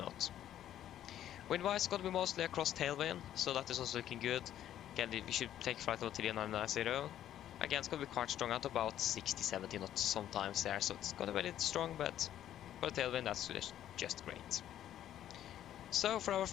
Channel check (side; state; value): right; quieter; 11.5 dB